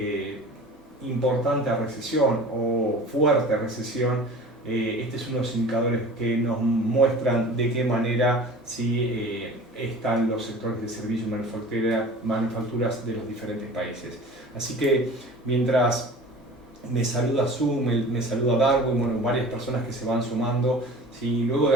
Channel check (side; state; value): both; normal; correlation 0.41